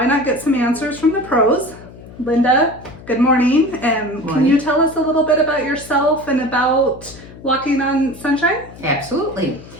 not get some answers from the pros? Linda, good morning. Can you tell us a little bit about yourself and about Walking on Sunshine? Absolutely.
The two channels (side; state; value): left; noise; hum, 18 dB below the sound